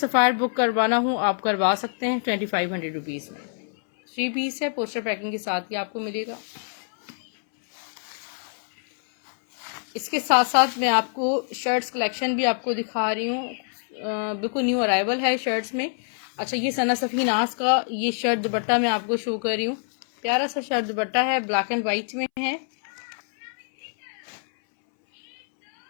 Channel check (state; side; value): silent; right; 62 dB below the other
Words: बुक करवाना हो आप करवा सकते हैं 2500 रुपीज में। 3 पीस है, पोस्टर पैकिंग के साथ ही आपको मिलेगा। इसके साथ साथ मैं आपको शर्ट्स कलेक्शन भी आपको दिखा रही हूँ। बिल्कुल न्यू अराइवल है शर्ट्स में। अच्छा, ये सना सफी नाज का ये शर्ट दुपट्टा मैं आपको शो कर रही हूँ। प्यारा सा शर्ट दुपट्टा है, ब्लैक एंड व्हाइट में है।